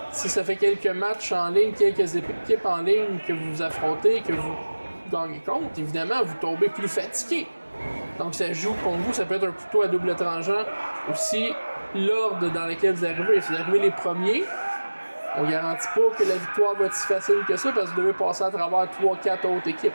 si ça fait quelques matchs en ligne, quelques équipes en ligne que vous affrontez, que vous gagnez contre, évidemment, vous tombez plus fatigué. Donc, ça joue contre vous, ça peut être un couteau à double tranchant. Aussi, l'ordre dans lequel vous arrivez. Si vous arrivez les premiers, on garantit pas que la victoire va être si facile que ça parce que vous devez passer à travers 3-4 autres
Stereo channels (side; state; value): both; inverted; correlation -1.00